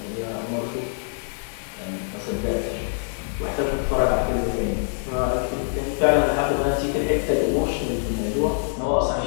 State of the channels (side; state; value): right; silent; digital silence